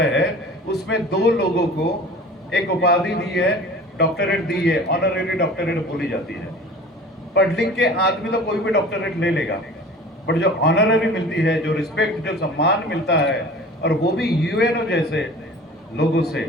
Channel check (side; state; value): both; normal; correlation 0.42